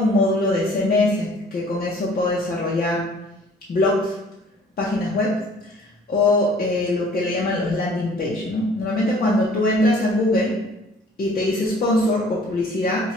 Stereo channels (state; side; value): normal; both; correlation 0.54